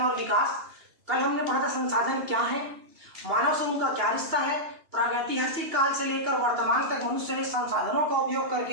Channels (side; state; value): left; late; 2.9 ms